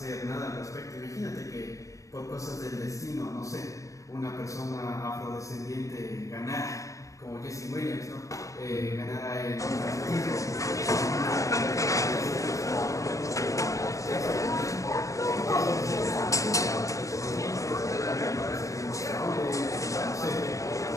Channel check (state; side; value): late; right; 0.16 ms